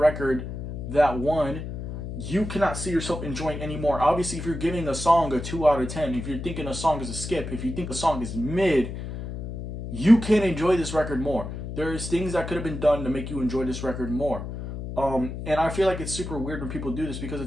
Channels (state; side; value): noise; left; hum, 7 dB below the sound